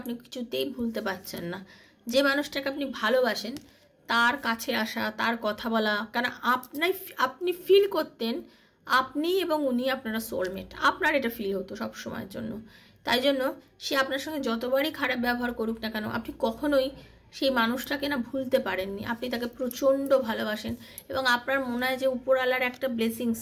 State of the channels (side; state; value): both; identical; correlation 1.00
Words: আপনি কিছুতেই ভুলতে পারছেন না। যে মানুষটাকে আপনি ভালোবাসেন তার কাছে আসা, তার কথা বলা, কারণ আপনি ফিল করতেন আপনি এবং উনি আপনারা সোলমেট, আপনার এটা ফিল হতো সব সময়ের জন্য। তাই জন্য সে আপনার সঙ্গে যতবারই খারাপ ব্যবহার করুক না কেন আপনি কখনোই সেই মানুষটাকে না ভুলতে পারেননি। আপনি তাকে প্রচণ্ড ভালোবাসেন, এবং আপনার মনে হয় যে উপরওয়ালার একটা ব্লেসিংস